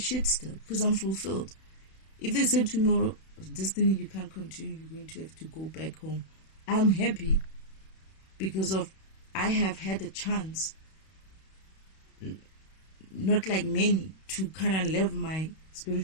still because I'm fulfilled. If they say tomorrow, Destiny, you can't continue, you're going to have to go back home, I'm happy because of I have had a chance, not like many, to kind of live my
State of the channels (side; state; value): right; late; 31 ms